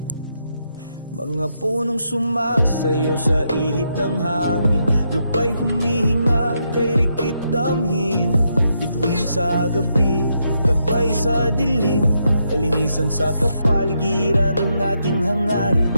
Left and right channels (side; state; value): both; inverted; correlation -0.80